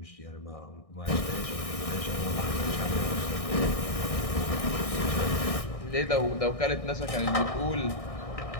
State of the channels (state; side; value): late; right; 1.6 ms